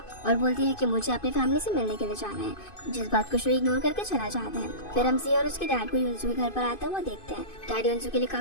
और बोलती है कि मुझे अपनी फैमिली से मिलने के लिए जाना है, जिस बात को शू इग्नोर करके चला जाता है। फिर हम सी और उसके डैड को युनसू के घर पर आता हुआ देखते हैं। डैड युनसू के लिए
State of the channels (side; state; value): right; late; 2.5 ms